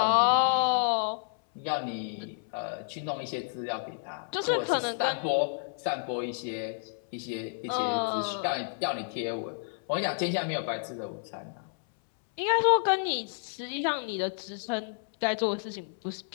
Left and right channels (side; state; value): right; silent; 58 dB below the other